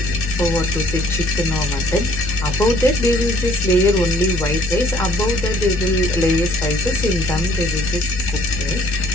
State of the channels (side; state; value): both; normal; correlation 0.59